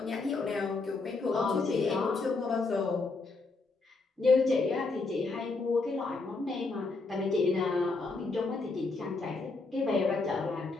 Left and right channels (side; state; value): right; quieter; 3.7 dB